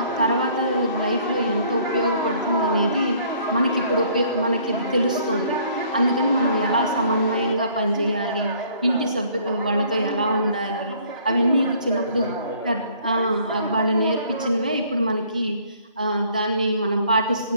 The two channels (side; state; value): both; inverted; correlation -0.59